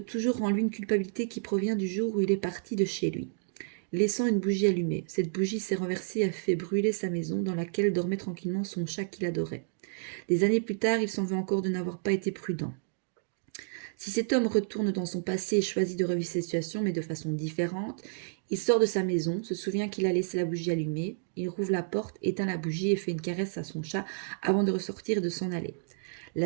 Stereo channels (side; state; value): left; silent; digital silence